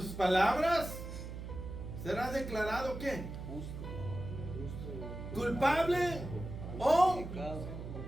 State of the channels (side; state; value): right; noise; hum, 8 dB below the sound